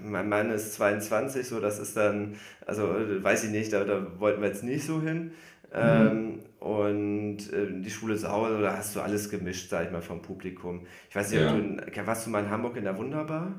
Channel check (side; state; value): both; identical; correlation 1.00